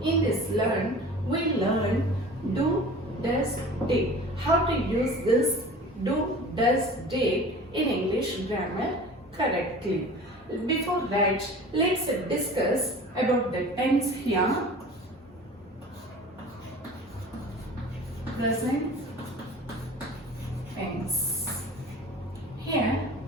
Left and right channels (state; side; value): normal; both; correlation 0.41